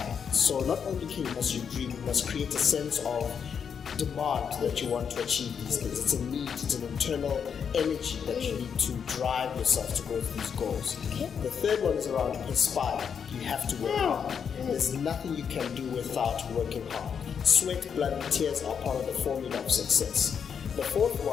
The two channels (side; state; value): right; quieter; 7.1 dB